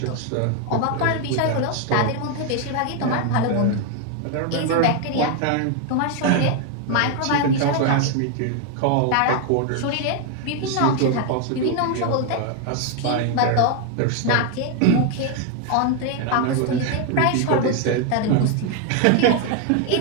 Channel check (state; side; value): different; both; correlation 0.01